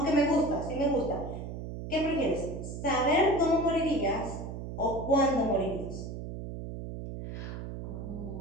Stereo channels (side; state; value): right; noise; hum, 7 dB below the sound